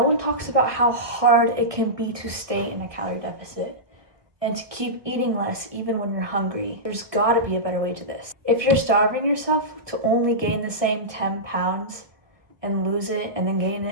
one talks about how hard it can be to stay in a calorie deficit and to keep eating less even when you're hungry. There's gotta be a better way to this. If you're starving yourself to only gain the same 10 pounds and lose it and then gain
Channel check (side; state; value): left; late; 1.6 ms